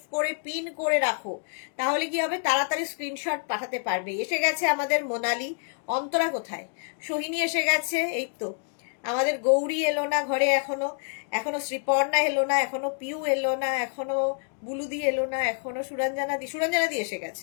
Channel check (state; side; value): silent; right; 60 dB below the other